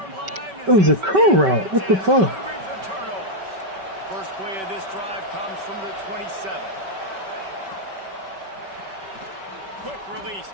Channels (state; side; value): late; left; 5.2 ms